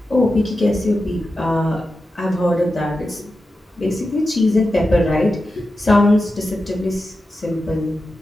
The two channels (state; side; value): normal; both; correlation 0.91